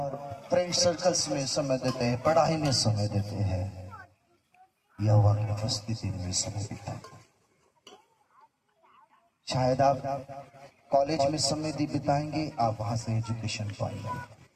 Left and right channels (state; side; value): identical; both; correlation 1.00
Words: फ्रेंड सर्कल्स में समय देते हैं, पढ़ाई में समय देते हैं, यहोवा की उपस्थिति में समय बिताते हैं। शायद आप कॉलेज में समय बिताएंगे, आप वहां से एजुकेशन पाएंगे।